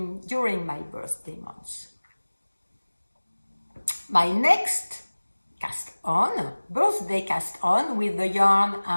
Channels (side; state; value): both; inverted; correlation -1.00